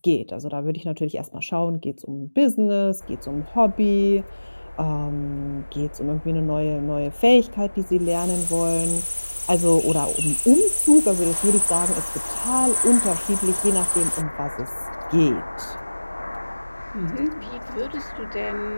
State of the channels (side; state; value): both; inverted; correlation -1.00